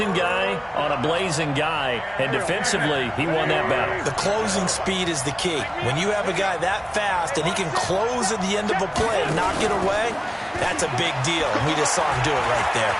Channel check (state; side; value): identical; both; correlation 1.00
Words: guy on a blazing guy, and defensively, he won that battle. The closing speed is the key. When you have a guy that fast and he can close at the end of a play and knock it away, that's a big deal, and we just saw him do it right there.